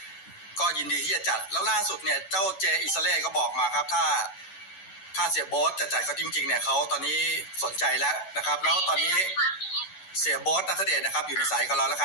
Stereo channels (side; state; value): right; late; 11 ms